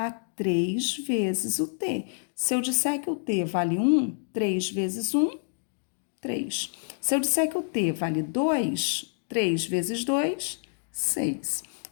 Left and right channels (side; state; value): right; silent; digital silence